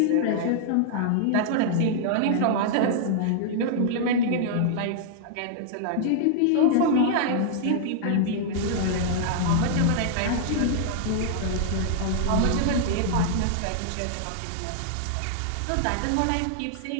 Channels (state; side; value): different; both; correlation -0.01